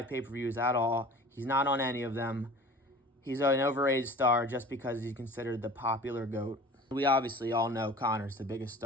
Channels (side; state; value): both; normal; correlation 0.42